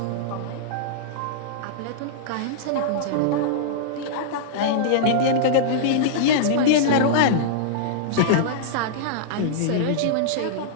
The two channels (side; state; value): both; different; correlation -0.02